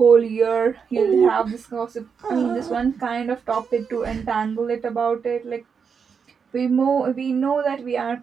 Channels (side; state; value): left; quieter; 6.2 dB